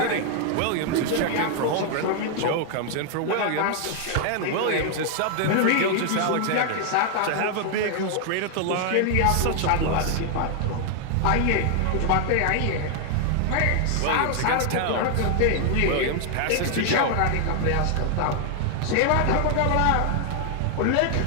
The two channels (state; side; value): different; both; correlation 0.00